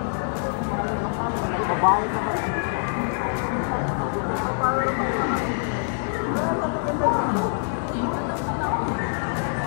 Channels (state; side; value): silent; right; 62 dB below the other